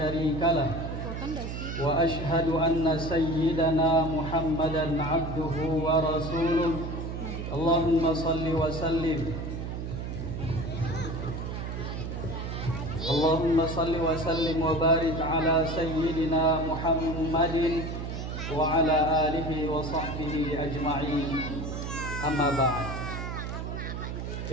lah wa ashhadu anna sayyidana Muhammadan abduhu wa rasuluh. Allahumma salli wa sallim wa barik ala sayyidina Muhammadin wa ala alihi wa sahbihi ajma'in. Amma ba'd.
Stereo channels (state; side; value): noise; right; hum, 5 dB below the sound